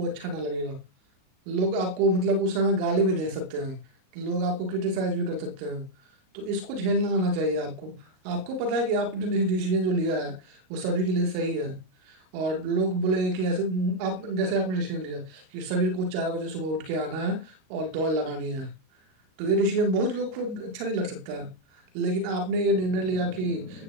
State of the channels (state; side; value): late; left; 38 ms